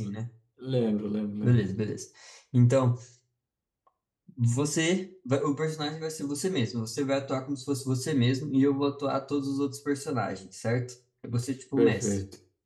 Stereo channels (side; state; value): both; identical; correlation 1.00